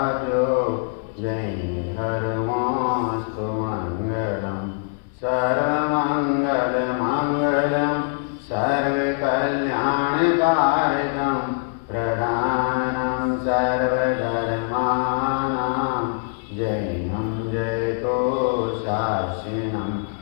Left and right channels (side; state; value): right; silent; 63 dB below the other